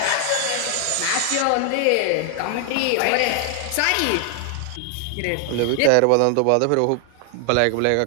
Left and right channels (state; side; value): different; both; correlation 0.00